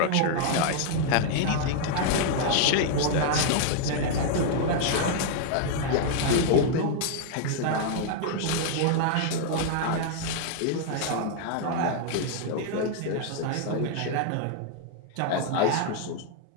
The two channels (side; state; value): both; different; correlation -0.01